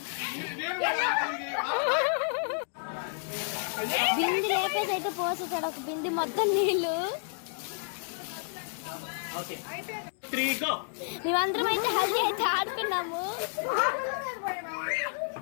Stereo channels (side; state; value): right; silent; digital silence